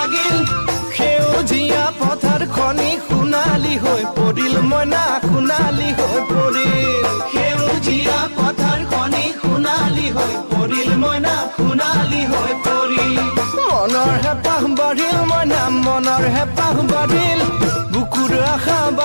সেউজীয়া পথাৰ খনি সোণালী হৈ পৰিল মইনা, সোণালী হৈ পৰিল। সেউজীয়া পথাৰ খনি সোণালী হৈ পৰিল মইনা, সোণালী হৈ পৰিল। মনৰ হেঁপাহ বাঢ়িল মইনা, মনৰ হেঁপাহ বাঢ়িল, বুকুৰ আশা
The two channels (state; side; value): inverted; both; correlation -1.00